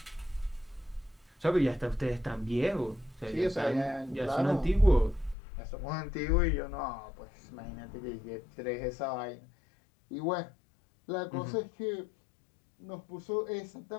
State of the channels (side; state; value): right; drops out; at 5.4 s